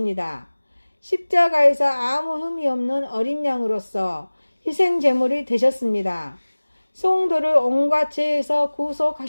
십자가에서 아무 흠이 없는 어린 양으로서 희생제물이 되셨습니다. 성도를 온갖 죄에서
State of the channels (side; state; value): both; inverted; correlation -1.00